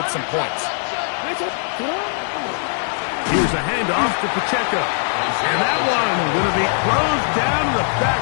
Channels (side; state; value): right; silent; 58 dB below the other